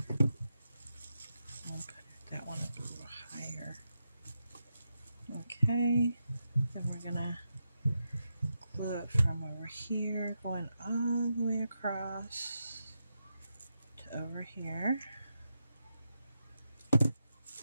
I'll put that one up a little higher. Okay, then we're going to glue it from over here, going all the way across to over here.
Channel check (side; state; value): both; inverted; correlation -0.86